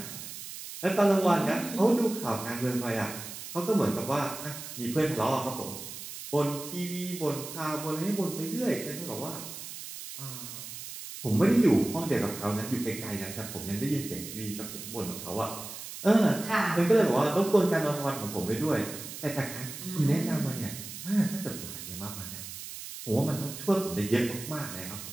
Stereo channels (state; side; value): noise; right; hiss, 10 dB below the sound